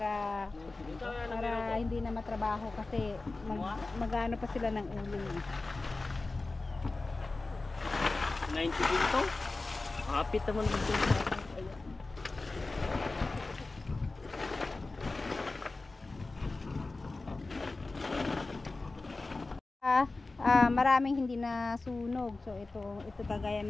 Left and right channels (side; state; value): right; quieter; 3.4 dB